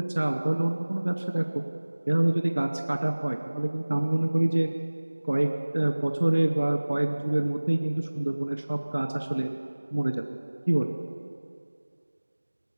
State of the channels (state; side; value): inverted; both; correlation -1.00